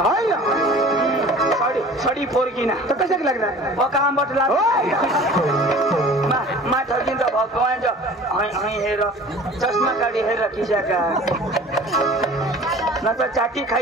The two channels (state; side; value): normal; both; correlation 0.44